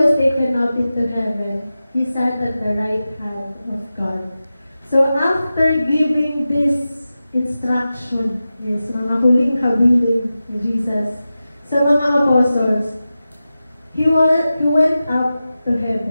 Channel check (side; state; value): both; inverted; correlation -0.94